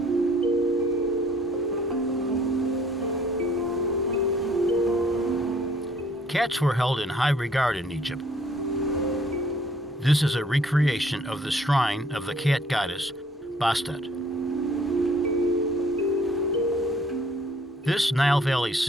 Cats were held in high regard in Egypt. This is a recreation of the shrine of the cat goddess Bastet. This Nile Valley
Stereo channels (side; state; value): both; normal; correlation 0.60